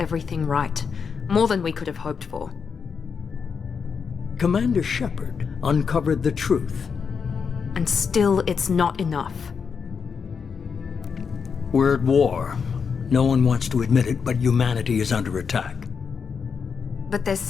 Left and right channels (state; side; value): quieter; right; 6.0 dB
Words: right. More than we could have hoped for. Commander Shepard uncovered the truth. And still, it's not enough. We're at war. No one wants to admit it, but humanity is under attack. But they're